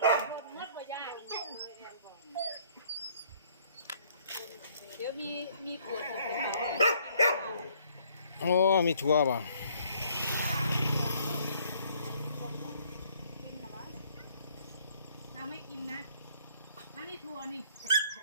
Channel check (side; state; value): both; inverted; correlation -0.62